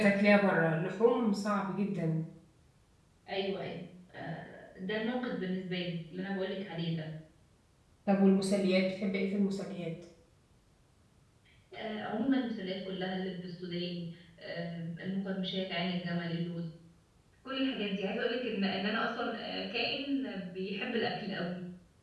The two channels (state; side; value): identical; both; correlation 1.00